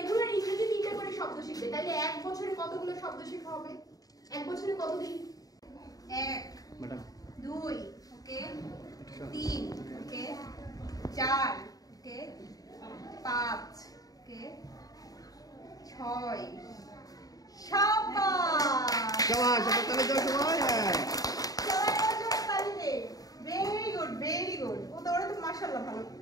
ইংরেজি 3টা করে শব্দ শিখবে। তাহলে 1 বছরে কতগুলো শব্দ শেখা হবে? 1 বছরে কতদিন? 1 2 ওকে, 3 ওকে, 4 ওকে, 5 ওকে, 6 শাবাশ শাবাশ তাহলে যাও সময়। হ্যাঁ ভেরি গুড ভেরি গুড। ও তো ওরা তো মাশাআল্লাহ ভালো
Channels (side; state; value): right; late; 0.18 ms